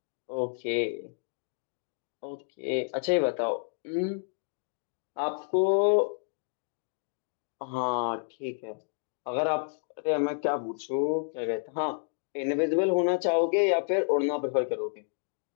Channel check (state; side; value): silent; right; digital silence